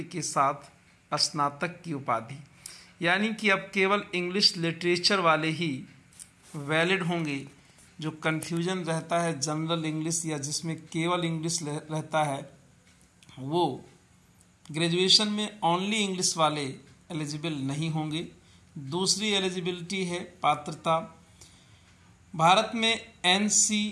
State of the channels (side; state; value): both; identical; correlation 1.00